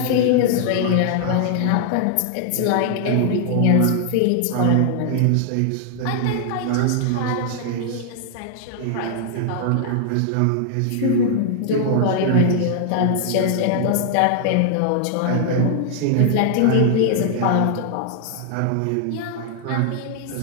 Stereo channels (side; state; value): both; different; correlation -0.01